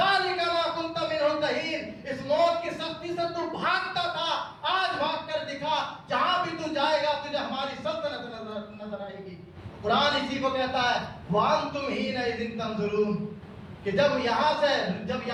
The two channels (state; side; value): identical; both; correlation 1.00